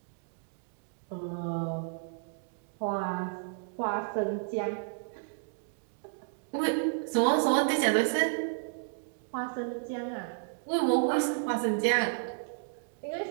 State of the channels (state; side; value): silent; left; digital silence